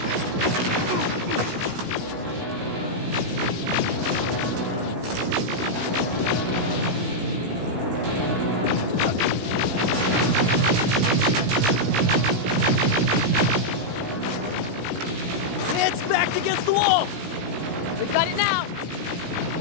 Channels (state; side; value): late; left; 17 ms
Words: It's backed against the wall! We've got it now.